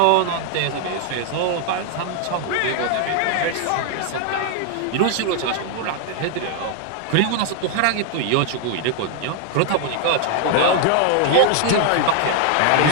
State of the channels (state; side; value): different; both; correlation 0.00